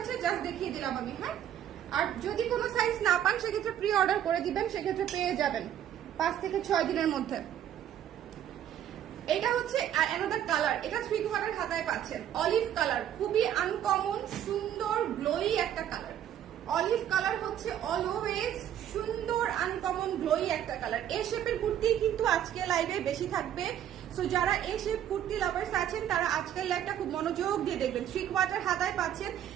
জাস্ট দেখিয়ে দিলাম আমি। হ্যাঁ, আর যদি কোনো সাইজ না পান সেক্ষেত্রে প্রি অর্ডার করে দিবেন, সেক্ষেত্রে পেয়ে যাবেন 5 থেকে 6 দিনের মধ্যে। এটা হচ্ছে অ্যানাদার কালার, এটা 3 কোয়ার্টার হাতায় পাচ্ছেন। অলিভ কালার, খুবই আনকমন সুন্দর গ্লোই একটা কালার। অলিভ কালার হচ্ছে অলওয়েজ সুন্দর আনকমন গ্লোই একটা কালার। এই শেপের কুর্তি কিন্তু আজকে লাইভে বেশি থাকবে। সো যারা এই শেপ কুর্তি লাভার্স আছেন তারা আজকের লাইভটা খুব মনোযোগ দিয়ে দেখবেন। 3 কোয়ার্টার হাতায় পাচ্ছেন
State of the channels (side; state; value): left; quieter; 10.6 dB